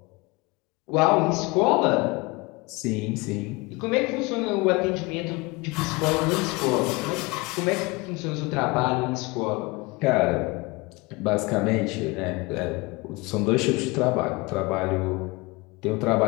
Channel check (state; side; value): quieter; right; 24.7 dB